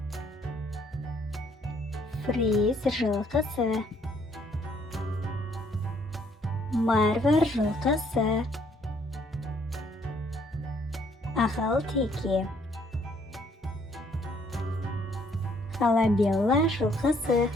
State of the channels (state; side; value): normal; both; correlation 0.66